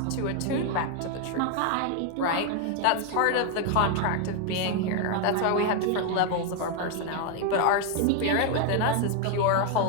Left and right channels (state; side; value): different; both; correlation 0.01